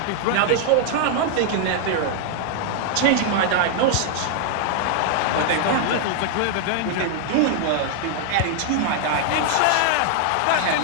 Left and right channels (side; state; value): both; different; correlation 0.00